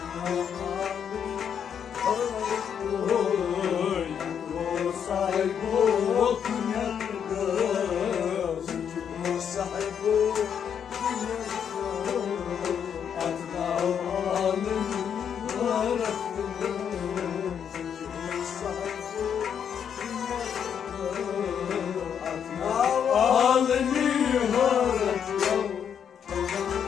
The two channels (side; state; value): right; quieter; 8.1 dB